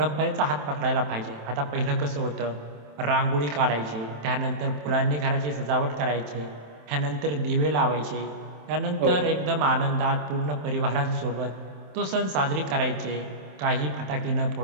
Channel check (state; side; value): late; left; 27 ms